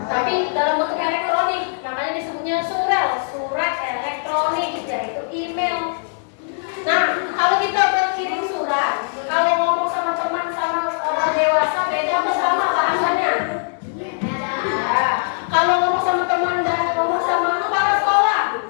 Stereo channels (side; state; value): right; silent; 65 dB below the other